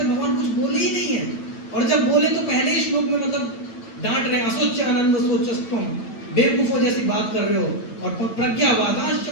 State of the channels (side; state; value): right; late; 9.0 ms